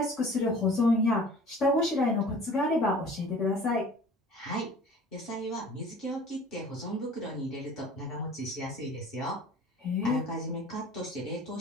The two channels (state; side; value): normal; both; correlation 0.46